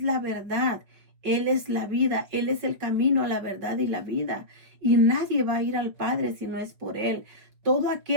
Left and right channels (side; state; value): left; late; 5.4 ms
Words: la verdad, Él es la vida, Él es el camino a la verdad y la vida. Y nadie va a ir al Padre si no es por Él. Todo